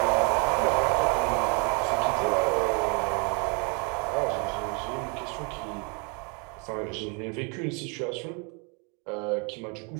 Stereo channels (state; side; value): quieter; left; 34.3 dB